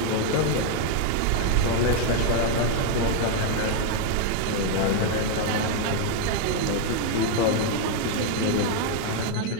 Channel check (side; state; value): both; different; correlation 0.01